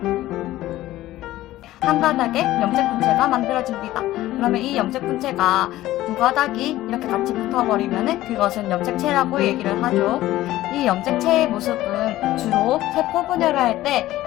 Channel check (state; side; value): quieter; right; 15.5 dB